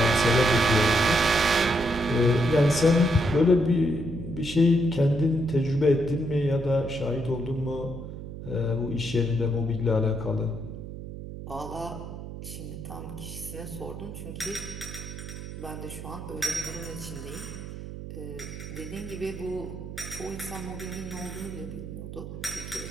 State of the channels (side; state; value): right; noise; hum, 10 dB below the sound